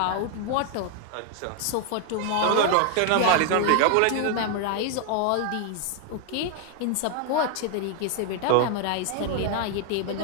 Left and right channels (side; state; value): both; different; correlation 0.00